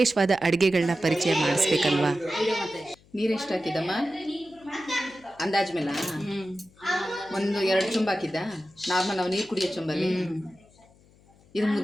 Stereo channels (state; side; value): noise; left; hum, 29 dB below the sound